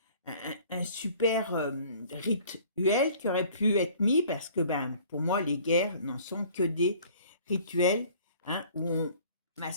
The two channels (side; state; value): both; inverted; correlation -0.52